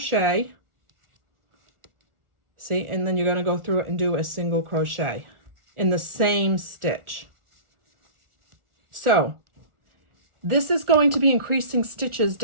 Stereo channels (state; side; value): late; left; 1.4 ms